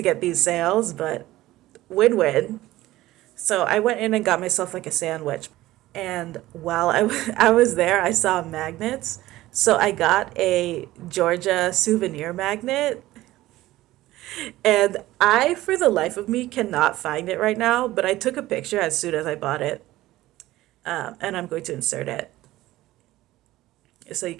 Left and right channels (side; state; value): left; quieter; 16.5 dB